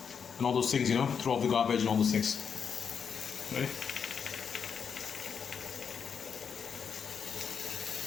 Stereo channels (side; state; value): right; quieter; 6.7 dB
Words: and all those things, throw off the garbage and all those things. Right?